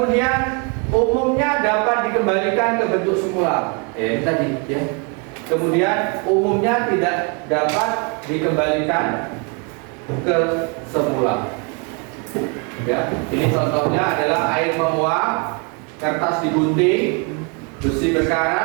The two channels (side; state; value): left; quieter; 33.2 dB